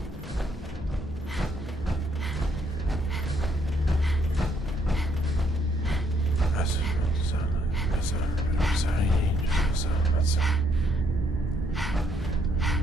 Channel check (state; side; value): normal; both; correlation 0.71